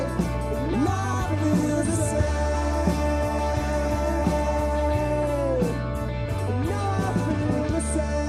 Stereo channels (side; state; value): both; identical; correlation 1.00